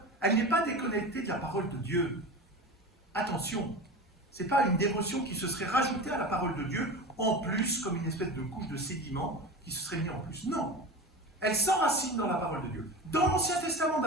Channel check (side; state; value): both; normal; correlation 0.30